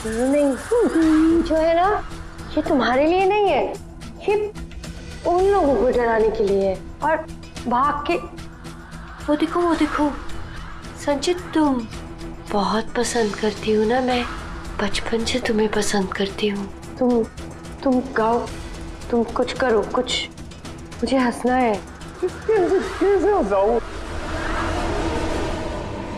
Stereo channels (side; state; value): both; identical; correlation 1.00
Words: नहीं, जो है ना, ये तुम्हारे लिए नहीं है, ये उन लोगों को डराने के लिए है। और भाग के वो देखो संचित, तुम बहुत पसंद करती हो ना, मैं बचपन से तुम्हें पसंद करती हूँ। तुम गाओ, तुम कुछ करो, कुछ, मुझे हंसना है। कैसे हंसाऊं?